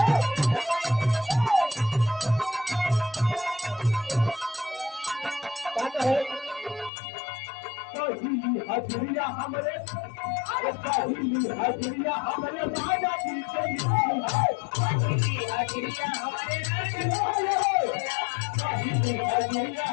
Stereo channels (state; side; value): drops out; right; at 6.9 s